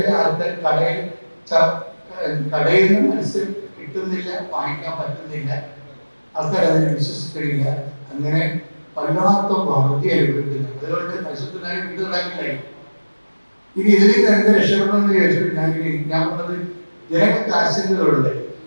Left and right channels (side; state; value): both; inverted; correlation -1.00